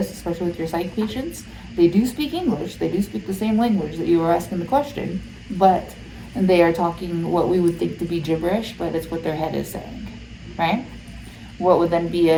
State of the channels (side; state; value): both; identical; correlation 1.00